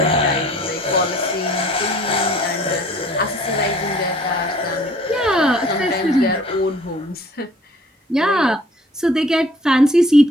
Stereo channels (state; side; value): normal; both; correlation 0.54